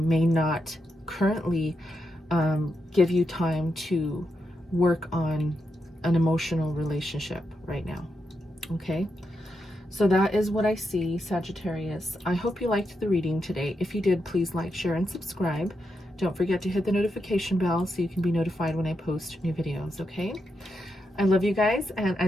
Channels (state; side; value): normal; both; correlation 0.84